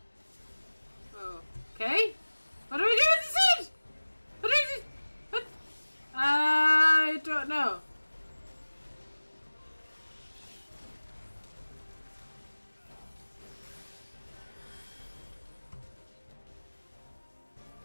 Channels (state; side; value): inverted; both; correlation -1.00